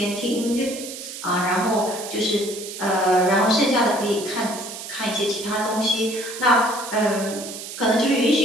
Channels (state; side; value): noise; right; hiss, 10 dB below the sound